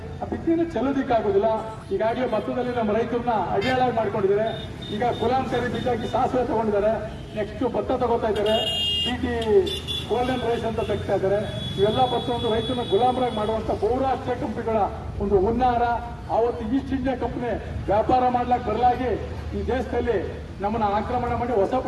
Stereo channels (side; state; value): both; identical; correlation 1.00